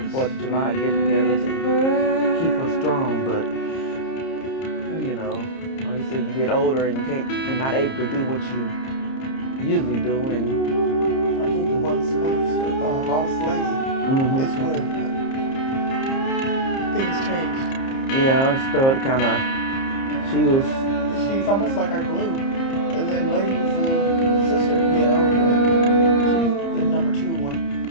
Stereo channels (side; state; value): right; late; 30 ms